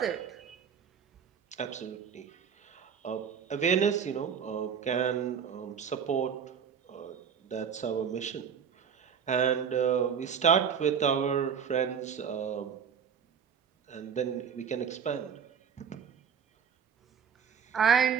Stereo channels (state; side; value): quieter; left; 7.2 dB